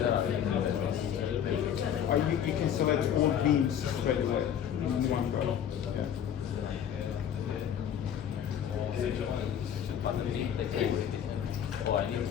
Or you can select all beams straight away in one go. Yeah.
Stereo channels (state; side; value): quieter; right; 9.1 dB